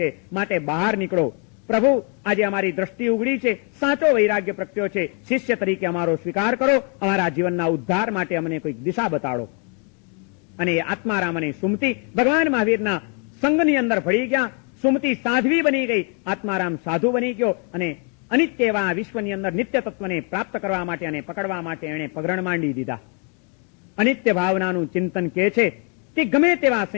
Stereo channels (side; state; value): right; quieter; 38.4 dB